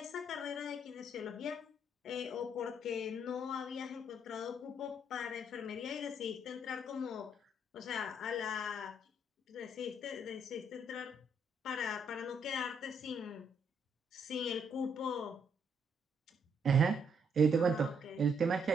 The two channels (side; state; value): both; normal; correlation 0.72